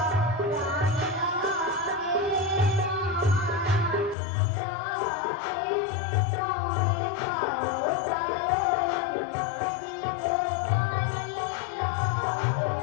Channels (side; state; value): right; drops out; at 4.2 s